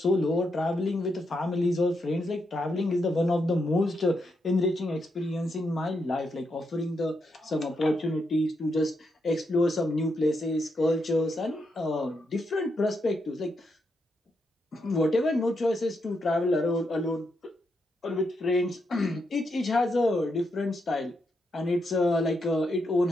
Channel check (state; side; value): normal; both; correlation 0.82